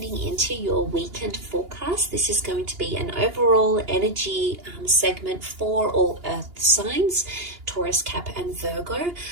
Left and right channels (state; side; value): late; left; 2.8 ms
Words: into your weekend forecast. This is going to be an overall energy segment for all earth signs, Taurus, Cap and Virgo,